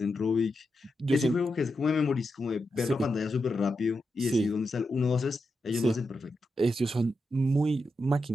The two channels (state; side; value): normal; both; correlation 0.87